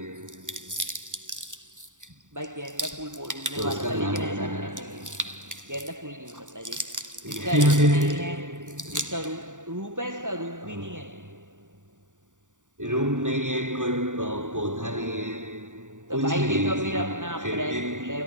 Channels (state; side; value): late; left; 0.86 ms